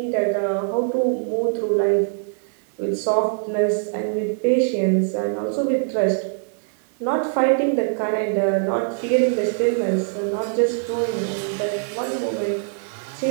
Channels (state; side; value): silent; left; 61 dB below the other